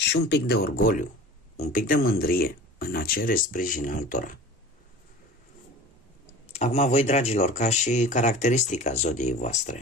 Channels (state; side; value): normal; both; correlation 0.39